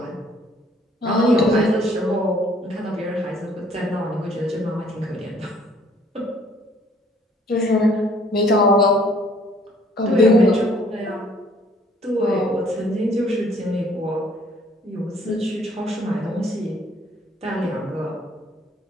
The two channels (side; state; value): both; normal; correlation 0.60